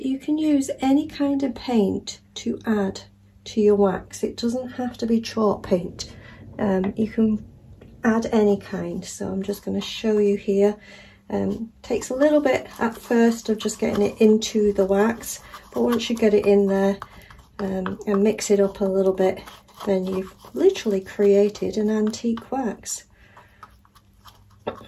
you can use any kind of paint to add to your wax. It doesn't have to be chalk paint. You can add any kind. So I'm just going to show you here. Takes a little bit at first of just getting it into the wax, but once you get it in there and mix it up a little bit, then you've literally created an antique wax.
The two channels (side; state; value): both; identical; correlation 1.00